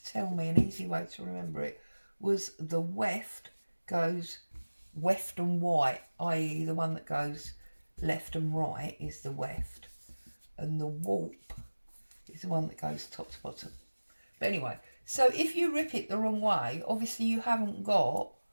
tell me an easy way to remember it was the weft goes weft and white, i.e. the one that goes left and right is the weft. And the warp is the one that goes top to bottom. But anyway, so if you rip it the wrong way, obviously you haven't got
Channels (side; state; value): both; inverted; correlation -1.00